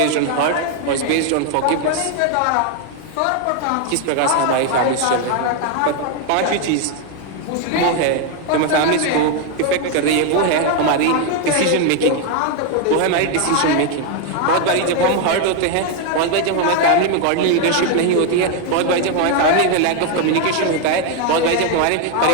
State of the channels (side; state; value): both; different; correlation 0.01